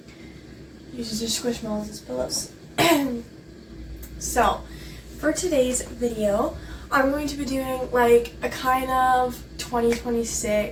Uses her squishmallows as pillows. So, for today's video, I'm going to be doing like a kind of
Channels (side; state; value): both; identical; correlation 1.00